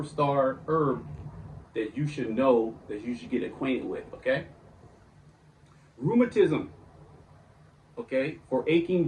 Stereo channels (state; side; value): identical; both; correlation 1.00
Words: herb that you should know, that you should get acquainted with. Okay, rheumatism. Okay, for aching